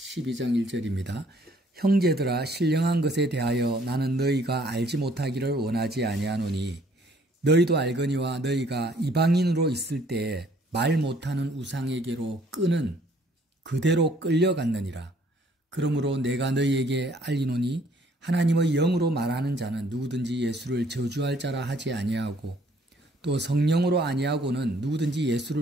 1절입니다. 형제들아 신령한 것에 대하여 나는 너희가 알지 못하기를 원하지 아니하노니 너희도 알거니와 너희가 이방인으로 있을 때에 말 못하는 우상에게로 끄는 그대로 끌려갔느니라. 그러므로 내가 너희에게 알리노니 하나님의 영으로 말하는 자는 누구든지 예수를 저주할 자라 하지 아니하고 또 성령으로 아니하고는 누구든지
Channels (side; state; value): both; normal; correlation 0.61